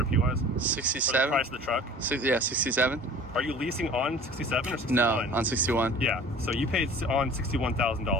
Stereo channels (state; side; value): normal; both; correlation 0.44